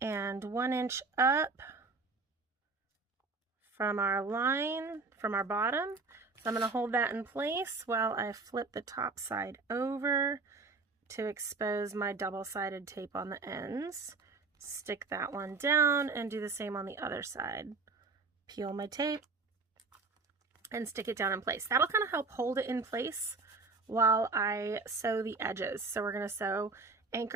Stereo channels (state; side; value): quieter; left; 4.0 dB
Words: 1 inch up from our line, from our bottom. So I'm going to hold that in place while I flip the top side over to expose my double-sided tape on the ends. Stick that one down and do the same on the other side. Peel my tape and stick it down in place. That'll kind of help hold it in place while I sew the edges. So we're going to sew